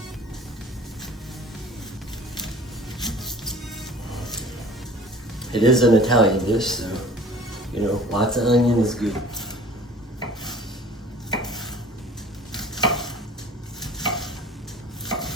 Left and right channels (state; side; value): normal; both; correlation 0.46